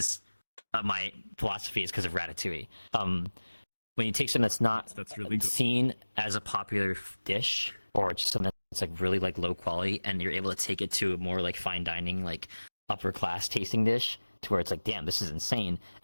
my philosophy is because of Ratatouille. When you take something that's really good. seen as a popular dish, or just something that's like really like low quality, and you're able to take it to a more like fine dining, like upper class tasting dish, to where it's like, damn, this is insane,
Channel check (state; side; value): inverted; both; correlation -1.00